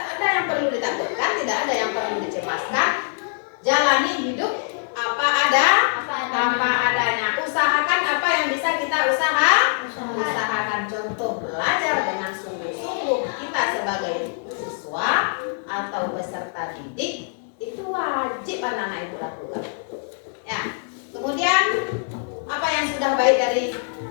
yang perlu ditakutkan, tidak ada yang perlu dicemaskan. Jalani hidup apa adanya. Usahakan apa yang bisa kita usahakan. Contoh, belajar dengan sungguh-sungguh. Kita sebagai siswa atau peserta didik itu wajib anak-anak ibu lakukan. Ya. Kemudian apa yang sudah baik dari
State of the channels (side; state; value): right; silent; digital silence